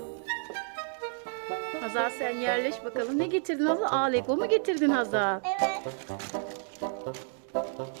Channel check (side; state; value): left; silent; 58 dB below the other